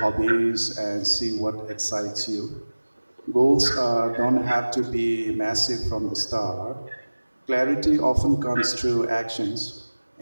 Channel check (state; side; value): inverted; both; correlation -1.00